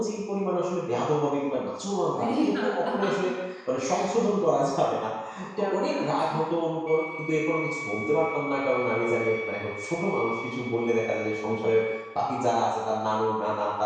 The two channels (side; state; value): both; identical; correlation 1.00